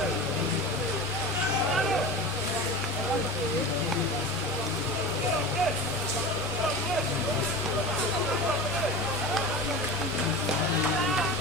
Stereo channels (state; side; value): normal; both; correlation 0.31